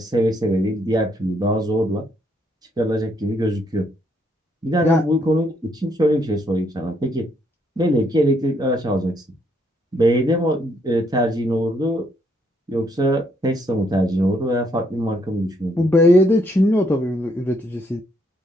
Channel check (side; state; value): both; normal; correlation 0.72